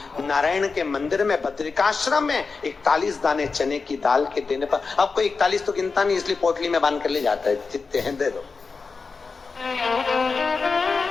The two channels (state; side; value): quieter; right; 4.6 dB